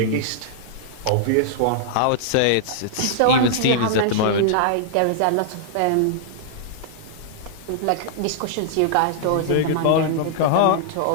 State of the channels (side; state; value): both; different; correlation -0.01